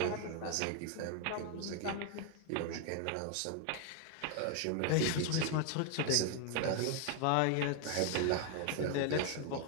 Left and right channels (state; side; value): different; both; correlation 0.01